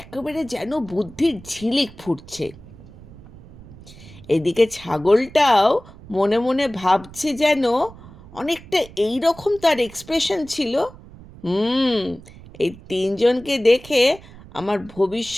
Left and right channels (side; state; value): right; noise; rumble, 19 dB below the sound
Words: একেবারে যেন বুদ্ধির ঝিলিক ফুটছে। এদিকে ছাগলটাও মনে মনে ভাবছে যেন, অনেকটা এই রকম তার এক্সপ্রেশন ছিল, এই 3 জনকে দেখে আমার